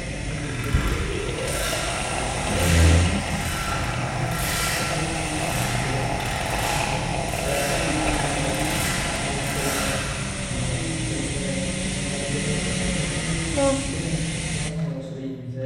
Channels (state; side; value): identical; both; correlation 1.00